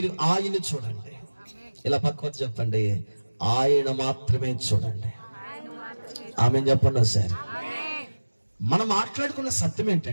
ఆయన్ని చూడండి. ఇలా పక్కన చెప్పండి, ఆయన మాత్రమే చూడండి. ఆమె చెప్పండి సార్. మనం మాట్లాడుకున్న సత్యం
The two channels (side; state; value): both; inverted; correlation -1.00